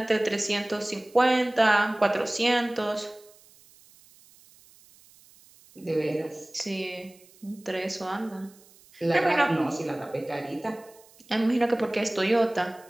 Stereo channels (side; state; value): right; noise; hiss, 27 dB below the sound